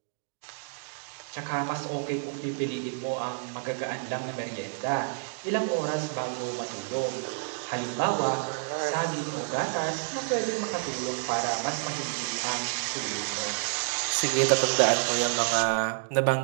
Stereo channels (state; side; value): silent; left; digital silence